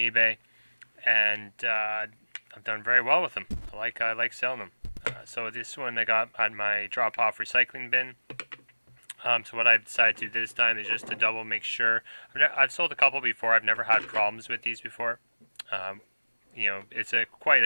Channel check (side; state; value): both; inverted; correlation -1.00